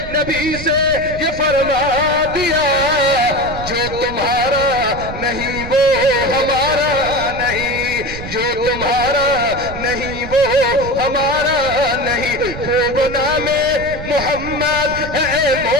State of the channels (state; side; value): noise; right; rumble, 10 dB below the sound